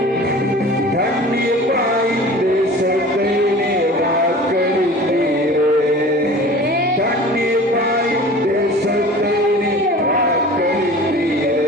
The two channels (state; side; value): normal; both; correlation 0.41